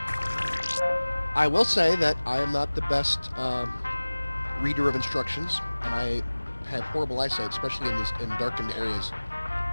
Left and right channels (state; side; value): inverted; both; correlation -1.00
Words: I will say that I am not the best reader of instructions, and I have horrible eyesight, especially in darkened areas.